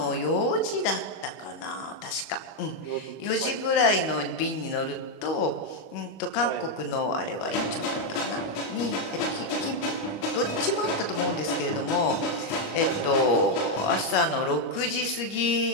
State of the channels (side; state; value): right; late; 25 ms